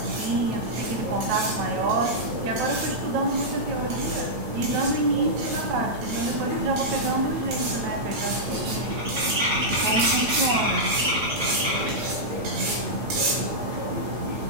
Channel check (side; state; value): left; late; 8.8 ms